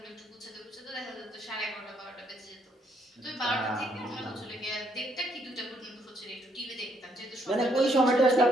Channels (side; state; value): both; normal; correlation 0.71